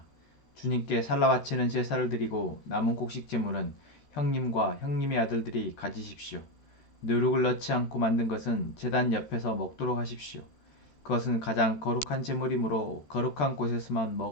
주님께 살라 바치는 제사를 드리고 남은 곡식 제물은 형님과 형님의 아들들이 가지십시오. 누룩을 넣지 않고 만든 것은 제단 옆에서 먹도록 하십시오. 그것은 가장 거룩한 제물이므로 거룩한 곳에서만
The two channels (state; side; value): late; right; 13 ms